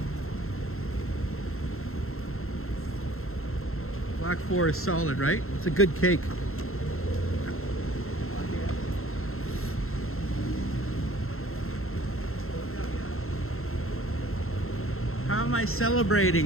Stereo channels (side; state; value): right; late; 0.62 ms